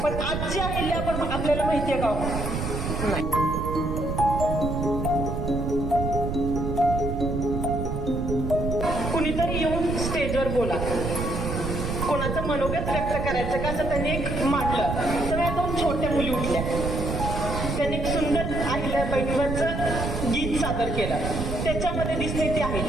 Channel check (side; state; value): right; noise; rumble, 3 dB below the sound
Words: पण आजची अहिल्या पण आपल्याला माहिती आहे का? नाही. कुणीतरी येऊन स्टेजवर बोला, कोणाचं मनोगत व्यक्त करायचं का असं त्यांनी एक मांडलं. तर या दोन छोट्या मुली उठल्या, त्यांनी एक सुंदर अहिल्याबाईंवरचं गीत सादर केलं. त्याच्यामध्ये दिसते ती